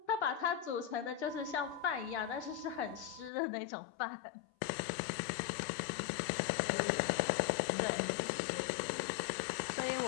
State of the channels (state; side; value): drops out; right; at 3.3 s